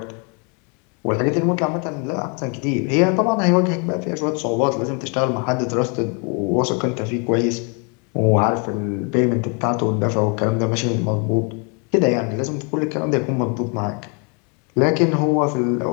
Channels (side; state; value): right; quieter; 36.2 dB